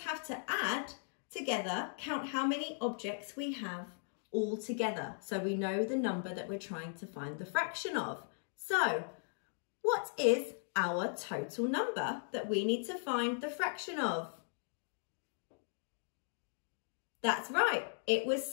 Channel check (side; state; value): right; silent; digital silence